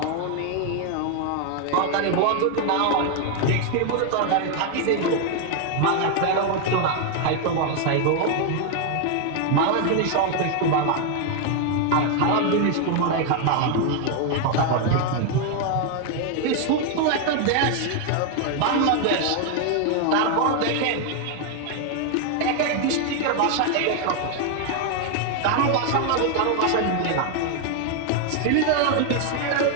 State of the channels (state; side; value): different; both; correlation 0.01